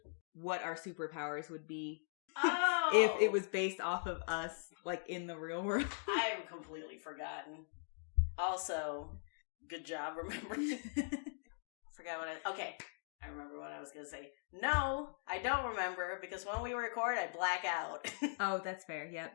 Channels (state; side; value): silent; right; digital silence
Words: what our superpowers would be? Oh! If it was based off of us, like, in the real world. I have completely forgotten. Also, good job remembering. Forgot what okay, I remember what I was going to say. No, I don't remember, because when we record, I black out. Oh, that's fair,